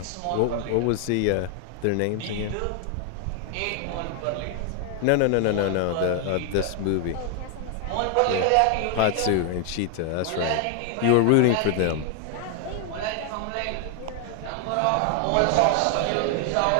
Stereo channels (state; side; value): different; both; correlation 0.00